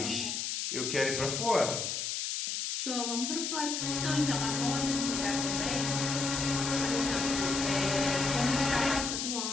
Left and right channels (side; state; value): left; noise; hiss, 2 dB below the sound